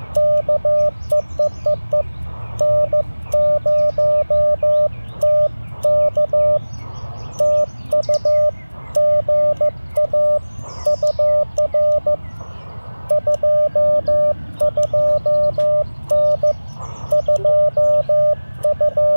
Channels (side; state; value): both; inverted; correlation -1.00